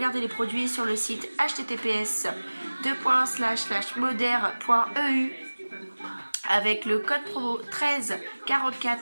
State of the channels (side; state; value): both; inverted; correlation -1.00